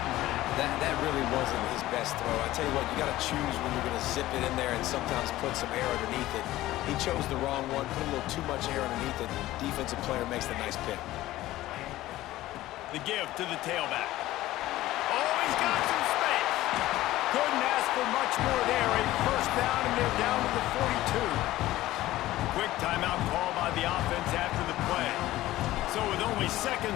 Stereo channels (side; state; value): right; quieter; 15.9 dB